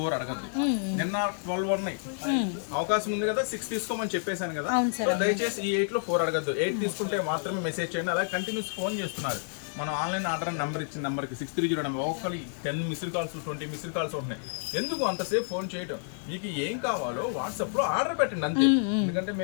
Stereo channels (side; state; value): right; silent; digital silence